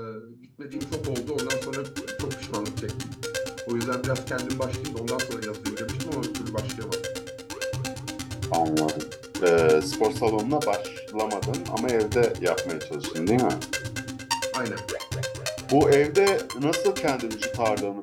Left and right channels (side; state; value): both; identical; correlation 1.00